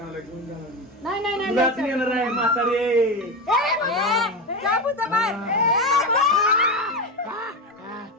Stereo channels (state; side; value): normal; both; correlation 0.18